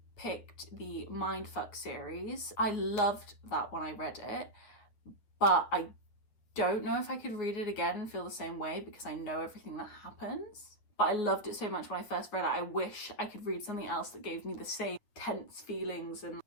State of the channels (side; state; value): right; late; 9.7 ms